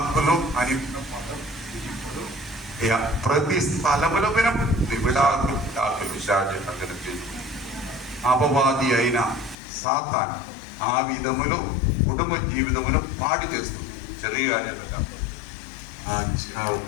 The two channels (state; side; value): drops out; right; at 9.6 s